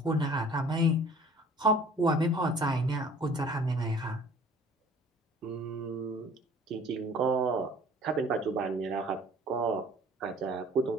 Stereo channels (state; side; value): normal; both; correlation 0.50